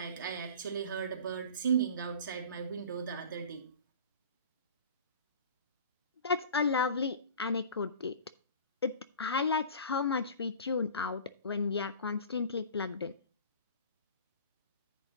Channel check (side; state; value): both; inverted; correlation -0.40